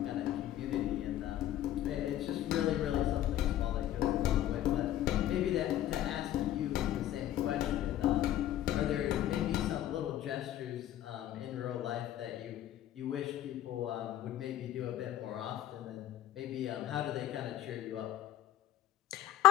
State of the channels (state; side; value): quieter; right; 12.6 dB